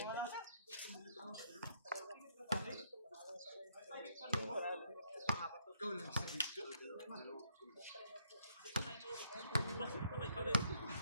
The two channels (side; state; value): both; inverted; correlation -0.71